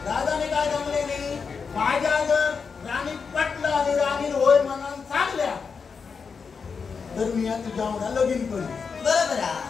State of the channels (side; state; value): right; quieter; 5.5 dB